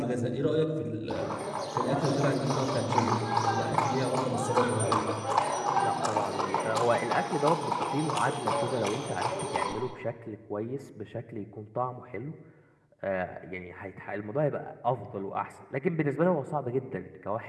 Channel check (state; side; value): identical; both; correlation 1.00